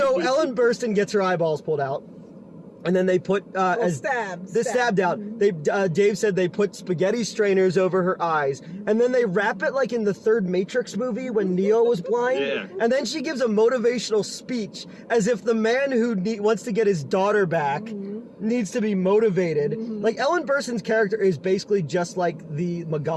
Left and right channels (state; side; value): identical; both; correlation 1.00